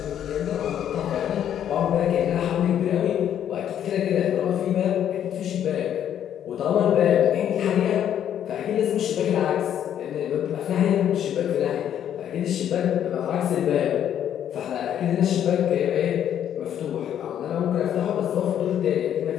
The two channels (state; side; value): quieter; right; 10.0 dB